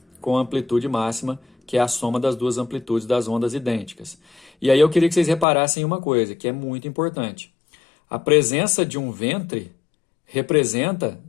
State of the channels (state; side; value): drops out; right; at 5.5 s